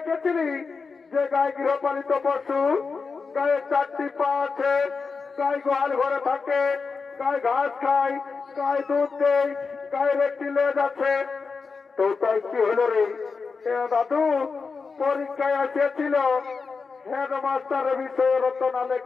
যে গায়ে গৃহপালিত পশু, গায়ে 4টি পা আছে, গায়ে গোয়াল ঘরে থাকে, গায়ে ঘাস খায়, গায়ে দুধ দেয়, গায়ের একটি লেজ আছে। তো তাই কি হলো রে? দাদু পরীক্ষায় এসেছিল হেডমাস্টারের বিষয়ে রচনা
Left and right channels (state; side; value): quieter; right; 4.8 dB